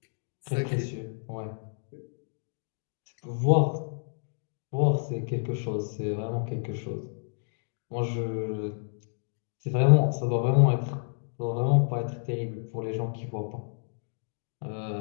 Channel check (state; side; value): silent; right; digital silence